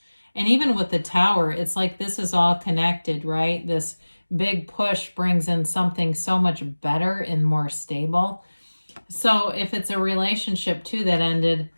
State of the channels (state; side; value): inverted; both; correlation -1.00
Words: And even with the tower, it's like this is all connected, right? This big push brings in something so much better and more stable. So if it's a relationship too that ended,